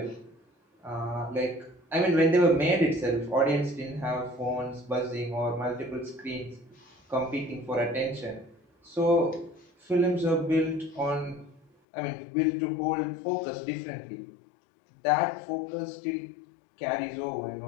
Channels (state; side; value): drops out; right; at 11.7 s